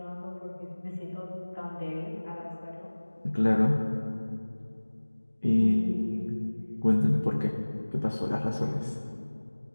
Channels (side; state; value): both; inverted; correlation -1.00